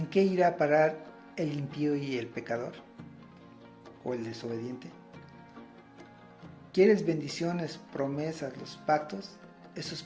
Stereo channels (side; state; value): both; identical; correlation 1.00